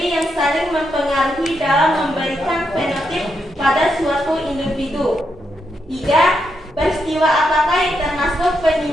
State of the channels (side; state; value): both; normal; correlation 0.82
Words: yang saling mempengaruhi dalam memberikan fenotip pada suatu individu. 3. Peristiwa apakah yang termasuk